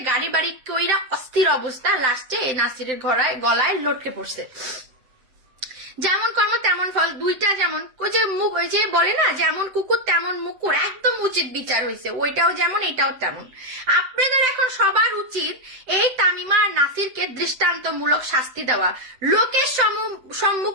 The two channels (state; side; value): late; left; 7.9 ms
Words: গাড়ি বাড়ি কইরা অস্থির অবস্থা, লাস্টে এই নাসিরের গলায় লটকে পড়ছে। যেমন কর্ম তেমন ফল, দুইটা যেমন ওই যে মুখ, ওই যে বলে না যেমন কুকুর তেমন মুকুর, একদম উচিত বিচার হয়েছে, ওইটাও যেমন এটাও তেমন। আপনাদের এখন সবার উচিত এই তামিমা আর নাসিরকে দৃষ্টান্তমূলক শাস্তি দেওয়া, লোকের